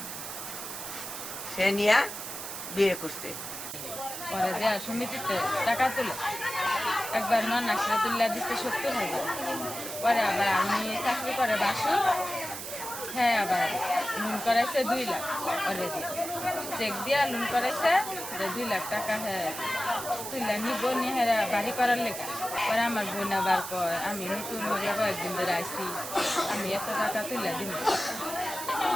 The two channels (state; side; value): noise; right; hiss, 8 dB below the sound